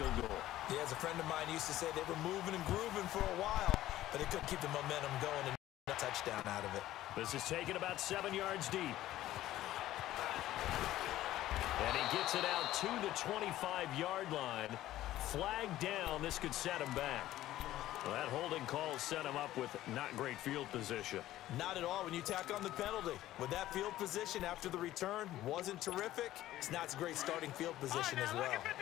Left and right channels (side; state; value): right; quieter; 14.5 dB